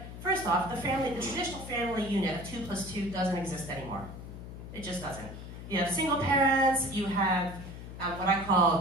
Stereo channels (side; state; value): left; noise; hum, 11 dB below the sound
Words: first off, the traditional family unit of 2 + 2 doesn't exist anymore. It just doesn't. You have single parents, you have what I